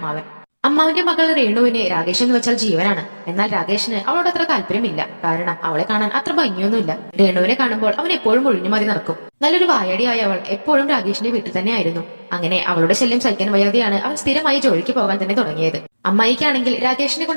അമ്മാവിന്റെ മകൾ രേണുവിന് രാകേഷ് എന്ന് വെച്ചാൽ ജീവനാണ്. എന്നാൽ രാകേഷിന് അവളോട് അത്ര താല്പര്യമില്ല. കാരണം അവളെ കാണാൻ അത്ര ഭംഗിയൊന്നുമില്ല. രേണുവിനെ കാണുമ്പോൾ അവൻ എപ്പോഴും ഒഴിഞ്ഞു മതി നടക്കും. നല്ലൊരു വായടിയായ അവൾ എപ്പോഴും രാകേഷിന്റെ വീട്ടിൽ തന്നെയായിരുന്നു. അങ്ങനെ അവളുടെ ശല്യം സഹിക്കാൻ വയ്യാതെയാണ് അവൻ സ്ഥിരമായി ജോലിക്ക് പോകാൻ തന്നെ തുടങ്ങിയത്. അമ്മായിക്കാണെങ്കിൽ രാകേഷിനെ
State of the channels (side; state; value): both; inverted; correlation -1.00